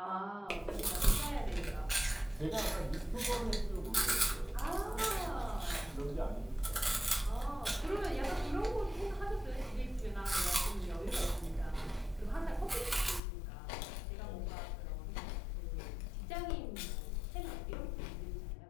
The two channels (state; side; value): drops out; right; at 13.2 s